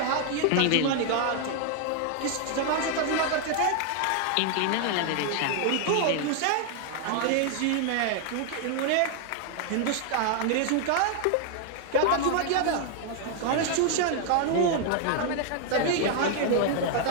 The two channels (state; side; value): different; both; correlation 0.00